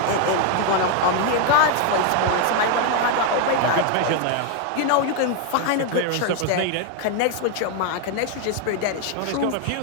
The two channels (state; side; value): different; both; correlation 0.01